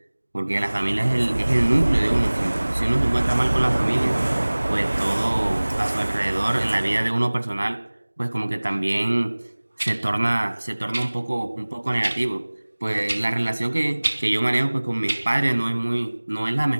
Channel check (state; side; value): inverted; both; correlation -1.00